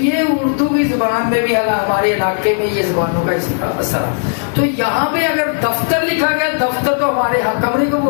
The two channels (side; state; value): right; silent; digital silence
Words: اردو کی زبان میں بھی ہمارے علاقے میں یہ زبانوں کا اثر ہے. تو یہاں پہ اگر دفتر لکھا گیا، دفتر تو ہمارے یہاں کمرے کو